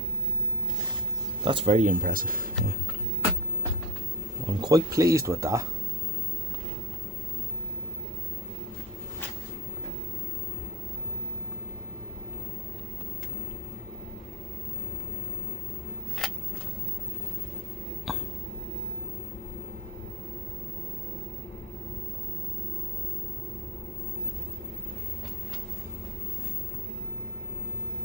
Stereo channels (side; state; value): both; normal; correlation 0.29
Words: That's very impressive. Yeah. I'm quite pleased with that.